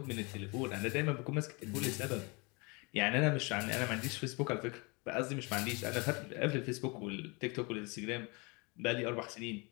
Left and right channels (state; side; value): quieter; right; 28.9 dB